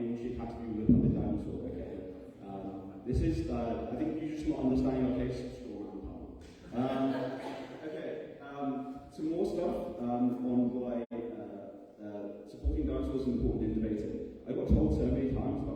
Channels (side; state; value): both; identical; correlation 1.00